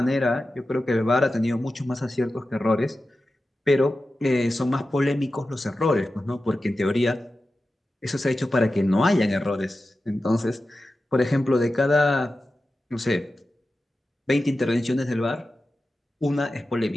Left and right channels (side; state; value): both; normal; correlation 0.93